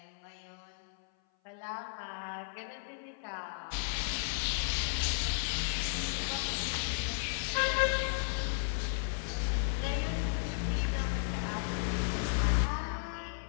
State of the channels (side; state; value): right; silent; 55 dB below the other